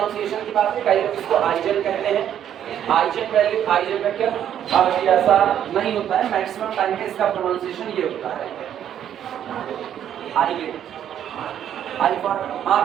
की बात है, कई लोग इसको आइजन कहते हैं, आइजन वैल्यू आइजन वेक्टर। अब ये ऐसा नहीं होता है, मैक्सिमम टाइम में इसका प्रोनाउंसिएशन ये होता है आइगन। आई फॉर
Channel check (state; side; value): quieter; left; 10.0 dB